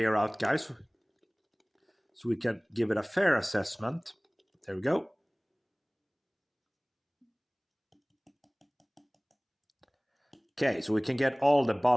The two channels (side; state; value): both; identical; correlation 1.00